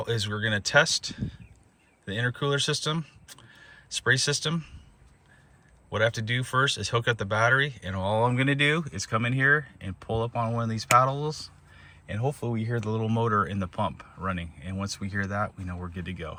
is we're going to test the intercooler system, spray system. What I have to do first is hook up the battery, and all I'm gonna do is come in here and pull up on one of these paddles, and hopefully we hear the little motor in the pump running. And once we hear that, we know we're good to go.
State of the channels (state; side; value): identical; both; correlation 1.00